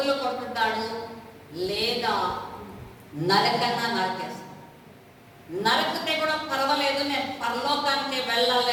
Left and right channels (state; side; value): identical; both; correlation 1.00